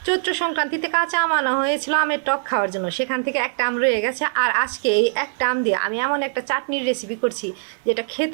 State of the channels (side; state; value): left; silent; 64 dB below the other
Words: চৈত্র সংক্রান্তিতে কাঁচা আম আনা হয়েছিল আমের টক খাওয়ার জন্য, সেখান থেকে একটা আম রয়ে গেছে। আর আজকে এই একটা আম দিয়ে আমি এমন একটা চাটনির রেসিপি করছি যেটা